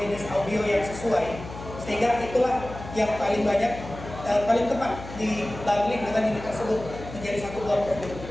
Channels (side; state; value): left; noise; hum, 12 dB below the sound